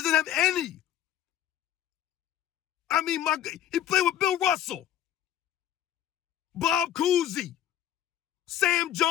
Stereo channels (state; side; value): quieter; right; 11.1 dB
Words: have any. I mean, he played with Bill Russell, Bob Cousy, Sam